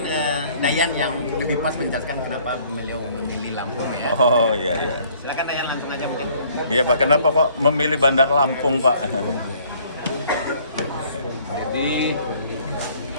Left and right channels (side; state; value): both; inverted; correlation -0.59